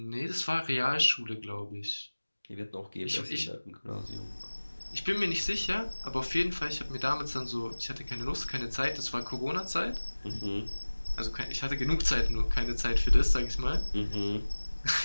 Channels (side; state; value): both; inverted; correlation -1.00